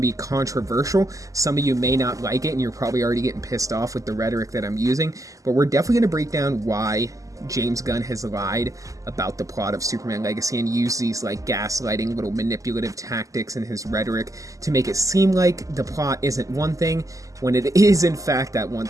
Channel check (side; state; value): left; late; 0.16 ms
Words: be controversial. Some of you may not like it, and you're probably already getting pissed off with the rhetoric that I'm using. But we're definitely going to break down why James Gunn has lied about the plot of Superman Legacy and used these like gaslighting little manipulative tactics in his rhetoric to make it seem like the plot isn't one thing when it is in fact that one